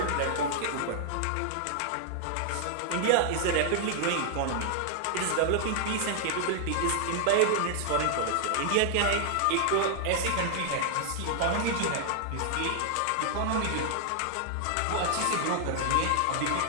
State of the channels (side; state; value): both; different; correlation -0.01